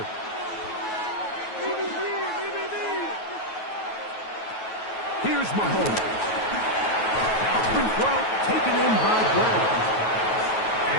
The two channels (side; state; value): right; late; 9.3 ms